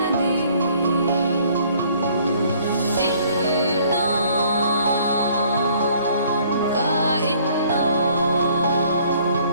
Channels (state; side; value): inverted; both; correlation -0.60